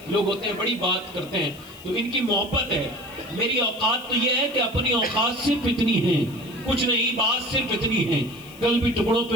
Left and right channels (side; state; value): left; noise; hiss, 22 dB below the sound